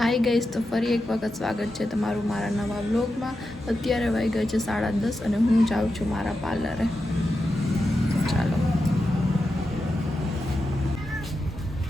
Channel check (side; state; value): both; normal; correlation 0.89